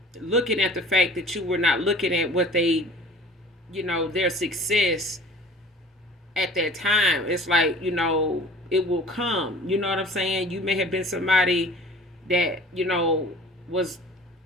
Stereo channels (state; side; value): normal; both; correlation 0.45